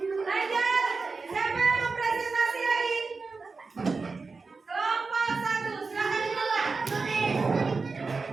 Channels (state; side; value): quieter; left; 4.3 dB